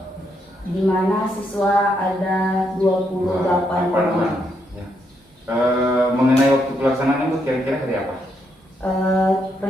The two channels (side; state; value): both; normal; correlation 0.77